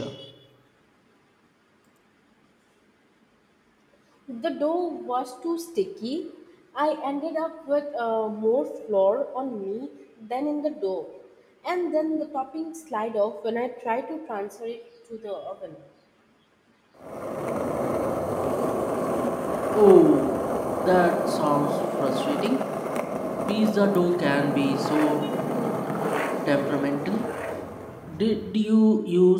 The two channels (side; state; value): both; identical; correlation 1.00